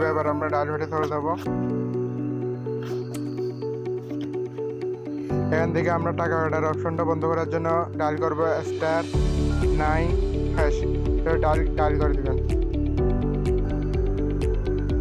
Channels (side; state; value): both; identical; correlation 1.00